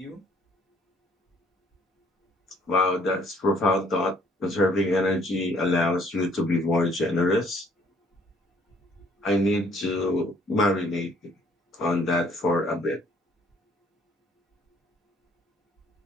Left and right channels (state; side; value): normal; both; correlation 0.62